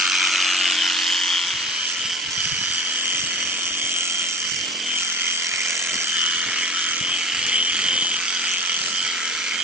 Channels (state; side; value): normal; both; correlation 0.38